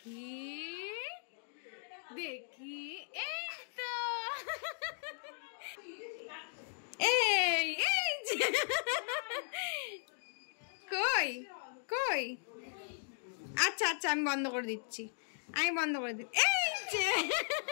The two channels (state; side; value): silent; right; digital silence